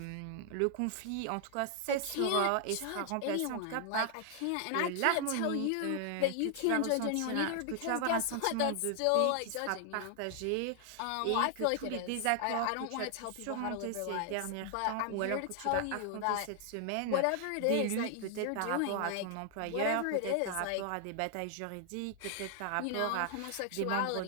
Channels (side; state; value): both; different; correlation 0.00